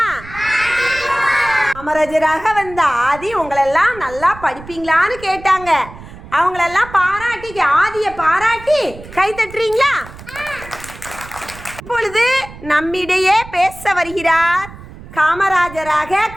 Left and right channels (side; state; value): right; noise; rumble, 16 dB below the sound